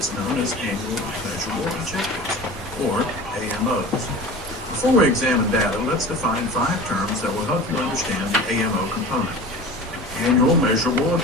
known as Annual Measurable Objectives, or AMOs. Before we examine data, let's define 5 terms that will help you understand the AMO component. Annual Measurable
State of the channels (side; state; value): both; normal; correlation 0.36